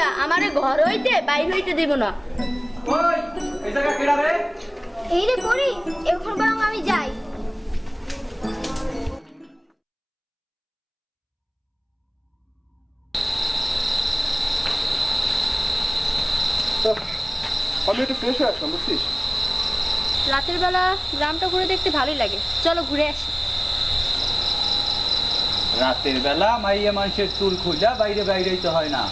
আমারে ঘর হইতে বাইর হইতে দেব না। ওই এই জায়গা কেডা রে? এই রে পড়ি, এখন বরং আমি যাই। আমি একটু ফ্রেশ হয়ে আসলাম, বুঝছিস? রাতের বেলা গ্রামটা ঘুরে দেখতে ভালোই লাগে, চলো ঘুরে আসি। রাতের বেলা মাইয়া মানুষের চুল খুঁজা বাইরে বাইরেই তো হয় না।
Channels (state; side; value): identical; both; correlation 1.00